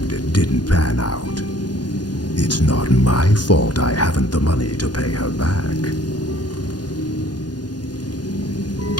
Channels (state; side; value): late; right; 0.70 ms